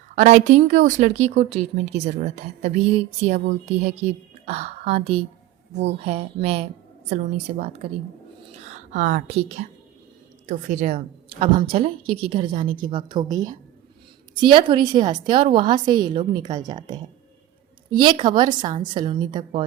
और आई थिंक उस लड़की को ट्रीटमेंट की ज़रूरत है। तभी सिया बोलती है कि हाँ दी, वो है, मैं सलोनी से बात करी हूँ। हाँ ठीक है, तो फिर अब हम चलें क्योंकि घर जाने की वक्त हो गई है। सिया थोड़ी सी हंसते और वहाँ से ये लोग निकल जाते हैं। ये खबर सांझ सलोनी तक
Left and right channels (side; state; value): left; quieter; 13.6 dB